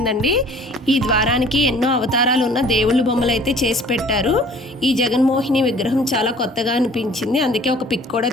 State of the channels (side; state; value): both; normal; correlation 0.51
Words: ఈ ద్వారానికి ఎన్నో అవతారాలు ఉన్న దేవుళ్ళ బొమ్మలు అయితే చేసి పెట్టారు. ఈ జగన్మోహిని విగ్రహం చాలా కొత్తగా అనిపించింది. అందుకే ఒక పిక్ కూడా